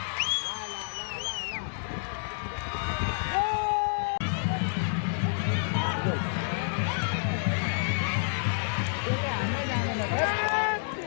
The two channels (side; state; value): right; silent; digital silence